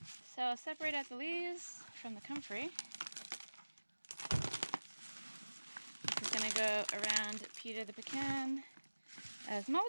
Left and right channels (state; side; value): inverted; both; correlation -1.00